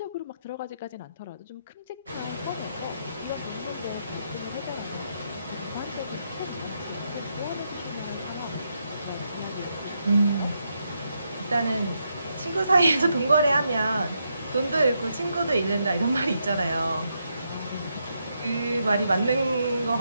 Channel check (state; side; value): inverted; both; correlation -0.81